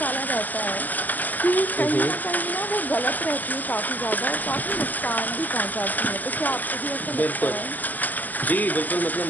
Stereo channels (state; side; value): late; right; 0.085 ms